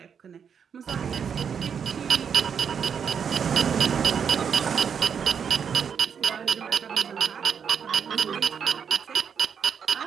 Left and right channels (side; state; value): left; quieter; 7.2 dB